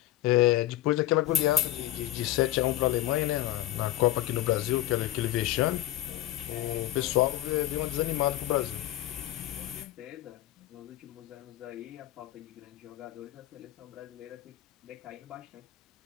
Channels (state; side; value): quieter; right; 14.4 dB